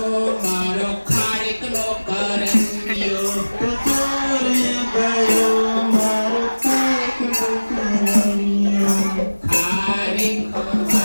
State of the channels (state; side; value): inverted; both; correlation -1.00